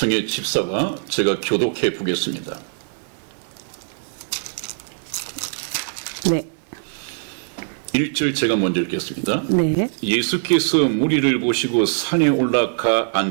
집사가 제가 교독해 보겠습니다. 네. 1절 제가 먼저 읽겠습니다. 네. 예수께서 무리를 보시고 산에 올라가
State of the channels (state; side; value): silent; left; digital silence